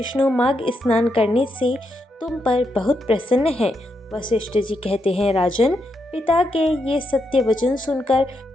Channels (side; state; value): both; normal; correlation 0.81